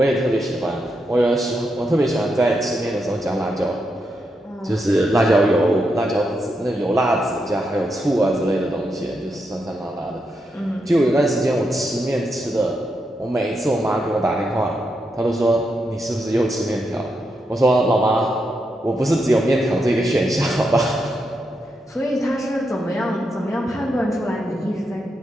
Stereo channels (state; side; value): normal; both; correlation 0.83